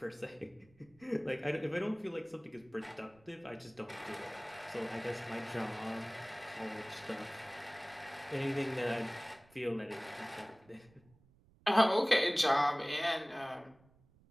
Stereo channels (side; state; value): right; noise; rumble, 29 dB below the sound